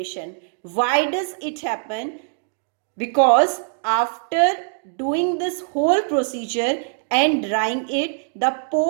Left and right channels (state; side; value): silent; left; digital silence